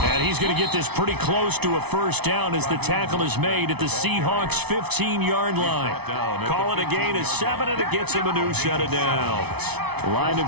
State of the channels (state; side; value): late; left; 0.99 ms